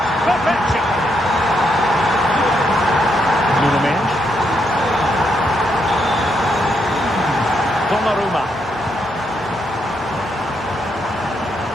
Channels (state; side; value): normal; both; correlation 0.78